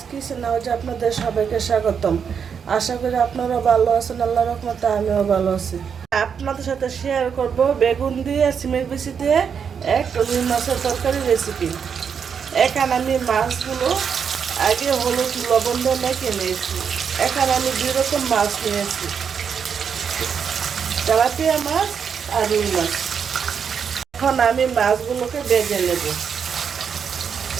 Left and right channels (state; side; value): quieter; left; 7.0 dB